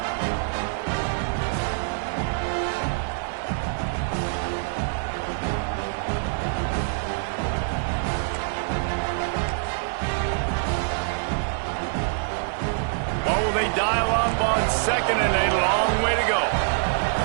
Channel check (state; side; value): silent; left; digital silence